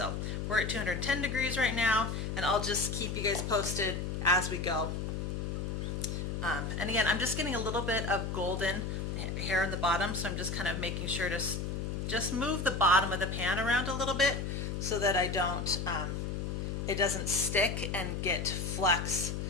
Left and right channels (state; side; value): noise; left; hum, 3 dB below the sound